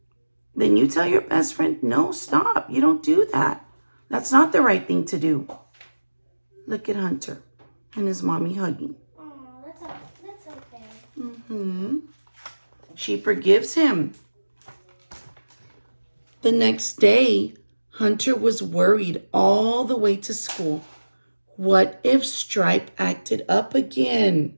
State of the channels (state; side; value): inverted; both; correlation -1.00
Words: then you tell your best friend, no, stop. You don't do that. That's not the right thing to do. Look at Hunter and his mommy hugging. Oh, that's okay. She forgives him. The next day, Hunter was worried all the way to school. What if Stripe acted up again?